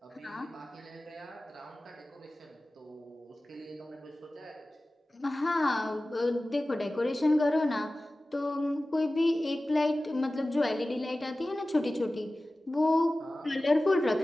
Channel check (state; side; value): normal; both; correlation 0.96